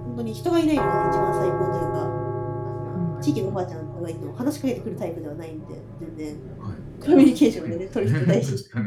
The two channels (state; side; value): identical; both; correlation 1.00